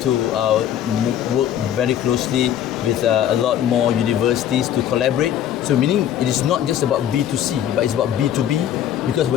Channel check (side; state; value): right; quieter; 10.6 dB